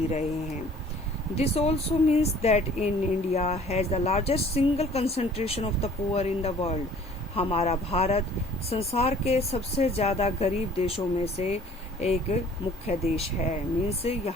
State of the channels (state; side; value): normal; both; correlation 0.52